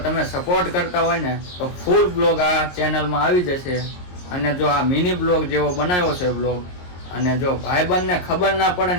તમે સપોર્ટ કરતા હોય ને તો ફૂલ બ્લોગ આ ચેનલમાં આવી જશે. અને જો આ મિની બ્લોગ જેવો બનાવ્યો છે બ્લોગ, અને જો ભાઈબંધને ખબર ના પડે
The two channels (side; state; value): right; late; 22 ms